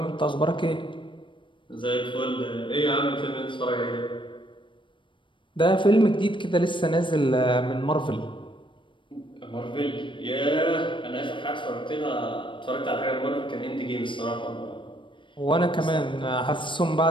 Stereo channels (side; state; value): right; late; 0.24 ms